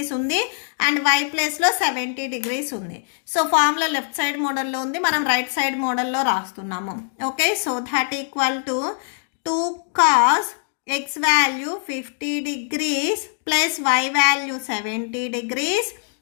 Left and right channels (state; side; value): silent; right; digital silence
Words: ఉంది అండ్ వై ప్లస్లో 70 degrees ఉంది. సో ఫార్ములా లెఫ్ట్ సైడ్ మోడల్లో ఉంది, మనం రైట్ సైడ్ మోడల్లో రాస్తున్నాము. Okay, so that equal to 2 cos x value 50 degrees plus y value 70 degrees